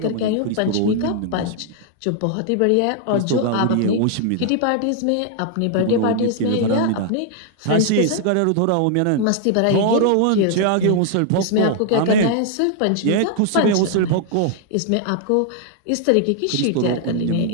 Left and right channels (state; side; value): different; both; correlation 0.00